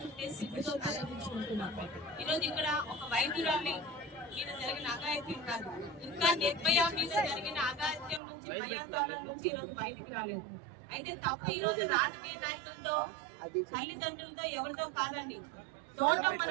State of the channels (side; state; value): left; drops out; at 8.2 s